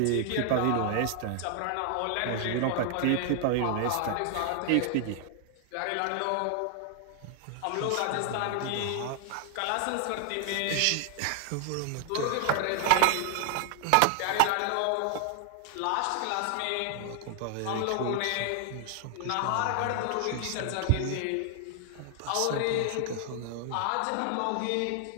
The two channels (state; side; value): different; both; correlation 0.00